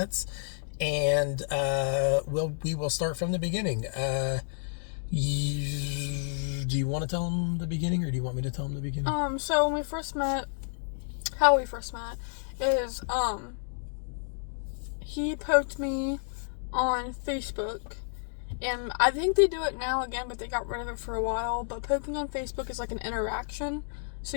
and we will start from the beginning. Do you want to tell them the beginning, or do you want me to tell them the beginning? So when we first met, how we first met is, he poked me on Facebook, and I think they do it now again, but they got rid of it for a while. But poking on Facebook is like an interaction, so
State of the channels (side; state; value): right; silent; digital silence